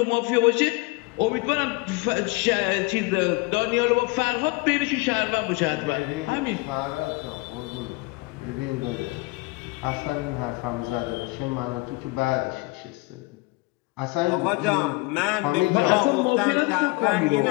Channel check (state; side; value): quieter; right; 23.8 dB